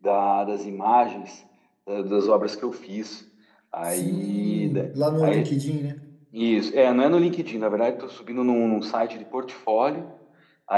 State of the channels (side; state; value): both; identical; correlation 1.00